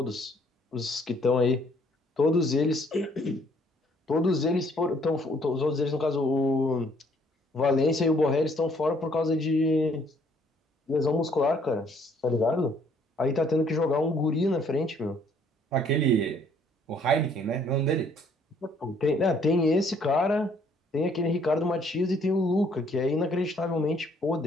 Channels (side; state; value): both; normal; correlation 0.63